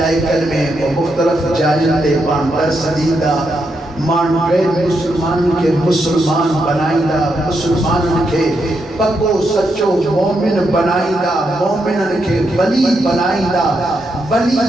میں وہ مختلف جائزے پانڈر سدیدہ مان گئے مسلمان کے مسلمان بنائیدہ مسلمان کے پکو سچو مومن بنائیدہ مومنن کے ولی بنائیدہ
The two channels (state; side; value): normal; both; correlation 0.82